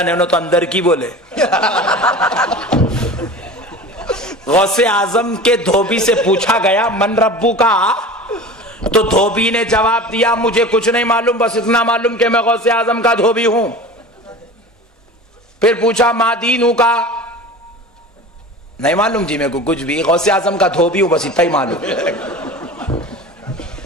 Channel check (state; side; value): normal; both; correlation 0.35